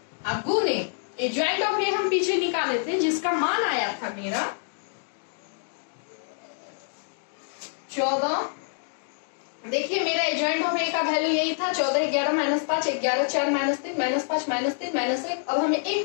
अब गुने एडजॉइंट ऑफ A हम पीछे निकाले थे जिसका मान आया था मेरा 14। देखिए मेरा एडजॉइंट ऑफ A का वैल्यू यही था 14, 11 -5, 11 4 -3 -5 -3 -1। अब हमें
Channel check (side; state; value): right; silent; digital silence